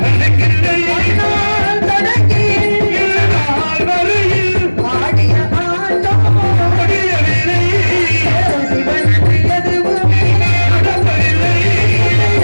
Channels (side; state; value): both; inverted; correlation -1.00